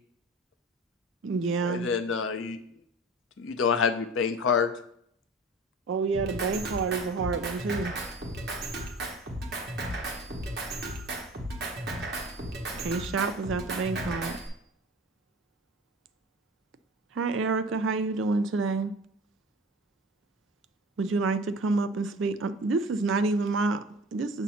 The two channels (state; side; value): normal; both; correlation 0.38